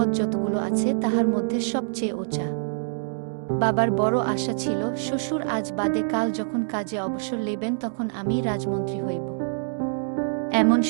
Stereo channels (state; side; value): silent; left; digital silence